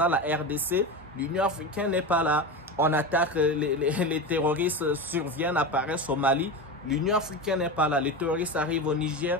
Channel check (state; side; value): normal; both; correlation 0.22